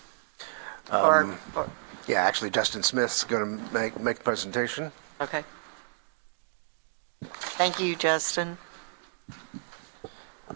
Yeah, actually, Dustin Smith's going to make the presentation. Okay. Thank you, Justin.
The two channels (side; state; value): left; silent; digital silence